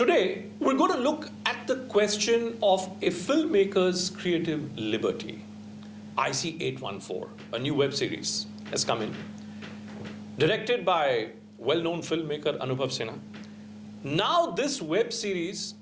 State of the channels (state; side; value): identical; both; correlation 1.00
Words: we're going to look at the question of a filmmaker's creative liberty. IC814, a new web series, has come in. Directed by well-known filmmaker Anubhav Sinha. Now this web series